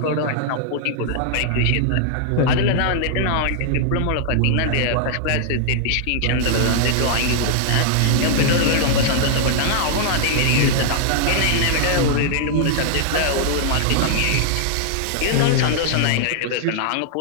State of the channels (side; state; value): both; different; correlation -0.01